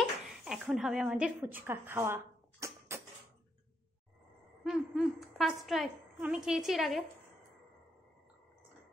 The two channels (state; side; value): normal; both; correlation 0.78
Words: এখন হবে আমাদের ফুচকা খাওয়া। ফার্স্ট ট্রাই, আমি খেয়েছি এর আগে।